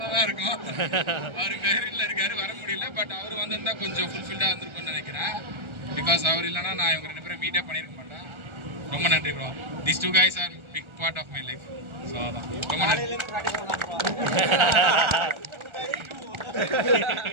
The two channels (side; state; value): left; late; 1.4 ms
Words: இருக்கும். அவர் பேரில் இருக்காரு, வர முடியல. பட் அவர் வந்திருந்தா கொஞ்சம் ஃபுல்ஃபில்டாக இருந்திருக்கும்னு நினைக்கிறேன். பிகாஸ் அவர் இல்லைன்னா நான் இவங்க 2 பேரும் மீடியா பண்ணியிருக்க மாட்டேன். ரொம்ப நன்றி bro. These 2 guys are big part of my life. So அதான் ரொம்ப நன்றி.